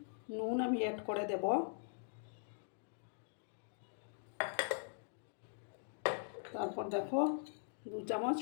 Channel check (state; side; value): silent; right; digital silence